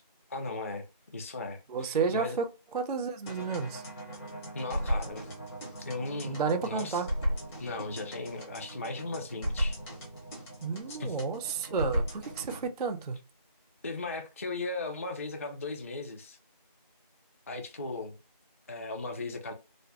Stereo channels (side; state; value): both; inverted; correlation -0.43